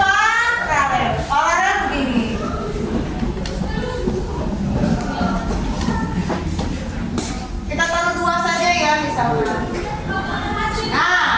Paralel begini. Kita taruh 2 saja ya misalnya.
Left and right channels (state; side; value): identical; both; correlation 1.00